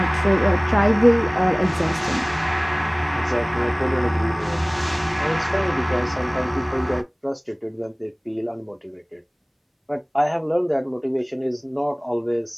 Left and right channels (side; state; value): both; identical; correlation 1.00